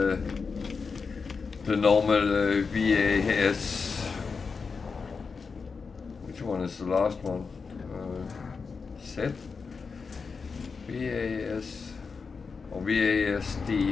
normal VAS. Which one is the last one? Set? VAS or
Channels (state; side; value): quieter; right; 5.0 dB